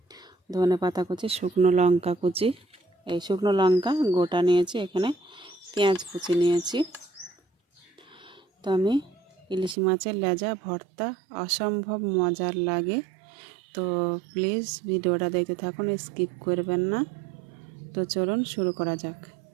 ধনেপাতা কুচি, শুকনো লঙ্কা কুচি, এই শুকনো লঙ্কা গোটা নিয়েছি, এখানে পেঁয়াজ কুচি নিয়েছি। তো আমি ইলিশ মাছের লেজা ভর্তা অসম্ভব মজার লাগে। তো প্লিজ ভিডিওটা দেখতে থাকুন, স্কিপ করবেন না। তো চলুন শুরু করা যাক।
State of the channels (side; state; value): left; drops out; at 9.8 s